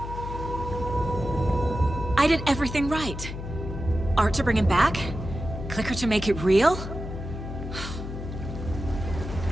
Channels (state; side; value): noise; left; hum, 8 dB below the sound